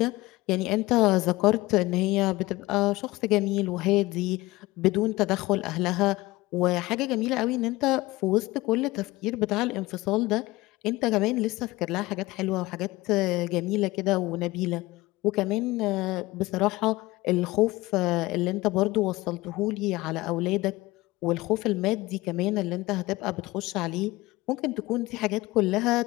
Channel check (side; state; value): right; quieter; 20.0 dB